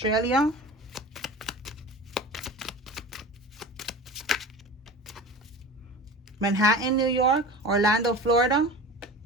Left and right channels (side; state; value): both; normal; correlation 0.35